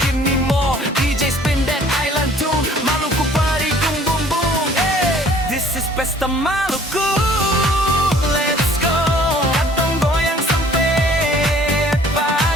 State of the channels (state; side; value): normal; both; correlation 0.54